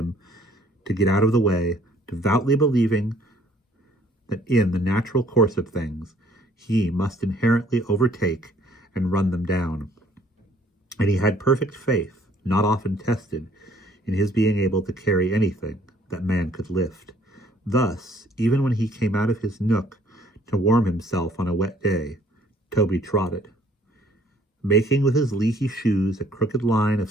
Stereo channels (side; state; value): both; normal; correlation 0.60